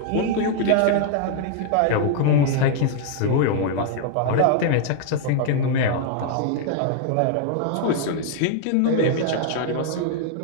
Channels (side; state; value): both; different; correlation 0.00